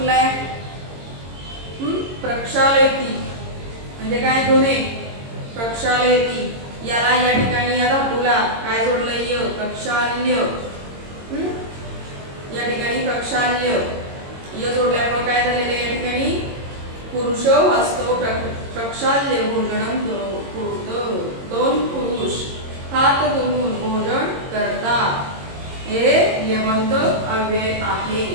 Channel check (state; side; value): late; left; 22 ms